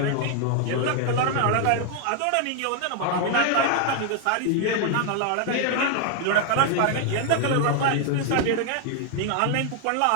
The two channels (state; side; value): different; both; correlation 0.00